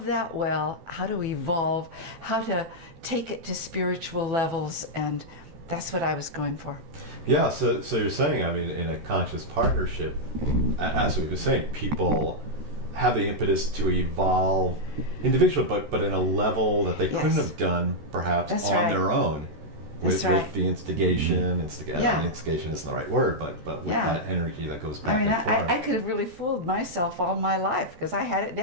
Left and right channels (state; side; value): late; left; 14 ms